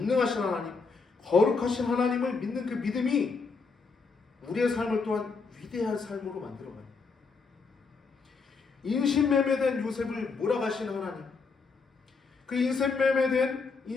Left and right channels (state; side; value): quieter; right; 4.7 dB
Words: 하나님, 거룩하신 하나님을 믿는 그 믿음이 우리의 삶을 또한 위대한 삶으로 만들어가요. 인신매매된 요셉을 몰아가신 하나님, 그